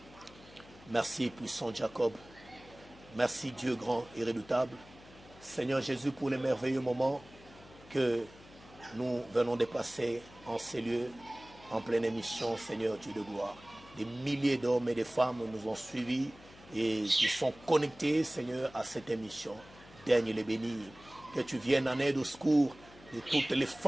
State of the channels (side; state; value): left; noise; hum, 21 dB below the sound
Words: Merci, puissant Jacob. Merci, Dieu grand et redoutable. Seigneur Jésus, pour les merveilleux moments que nous venons de passer en ces lieux, en pleine émission, Seigneur Dieu de gloire. Des milliers d'hommes et de femmes nous ont suivis et qui sont connectés, Seigneur, à cette émission. Daigne les bénir. Que tu viennes en aide au secours de toutes les